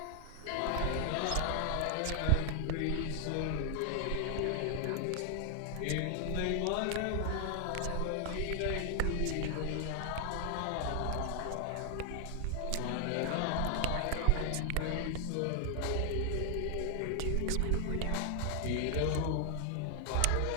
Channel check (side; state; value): both; different; correlation 0.00